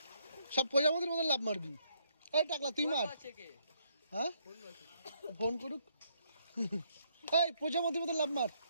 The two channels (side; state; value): both; inverted; correlation -0.71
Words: সব প্রজাপতির মতন লাভ মারবি। এই টাকলা তুই মার। হ্যাঁ ফোন করুক। এই প্রজাপতির মতন লাভ মার।